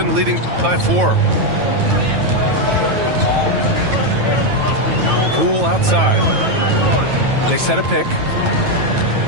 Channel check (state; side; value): late; left; 9.1 ms